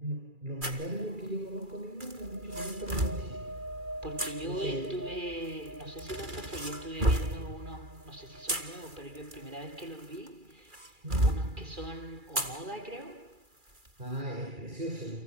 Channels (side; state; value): left; late; 2.4 ms